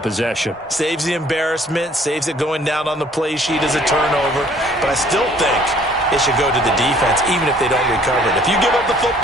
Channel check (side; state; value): both; normal; correlation 0.57